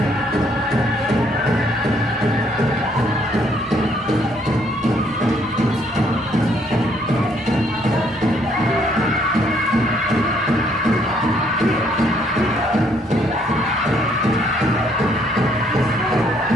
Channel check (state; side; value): noise; right; rumble, 27 dB below the sound